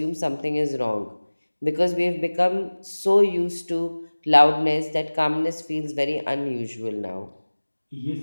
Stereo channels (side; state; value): both; inverted; correlation -1.00